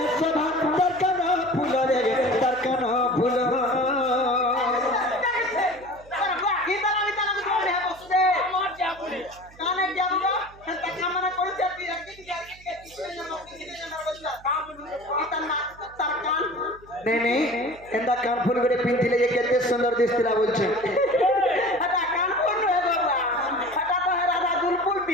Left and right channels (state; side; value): noise; right; hum, 24 dB below the sound